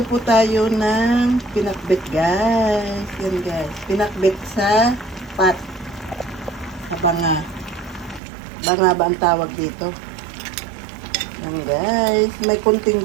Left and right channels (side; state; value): left; drops out; at 8.2 s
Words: po tayo ng pinakbet, guys. Yan, guys. Pinakbet sa pat. Sa banga. Banga ba ang tawag dito? Yan, guys. May